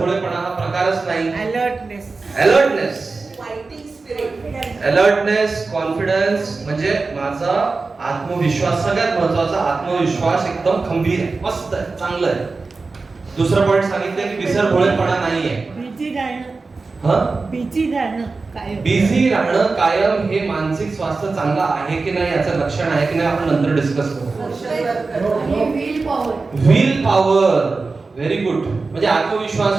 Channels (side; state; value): left; quieter; 4.0 dB